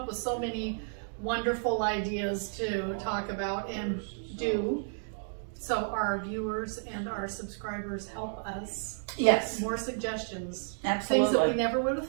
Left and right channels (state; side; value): silent; left; digital silence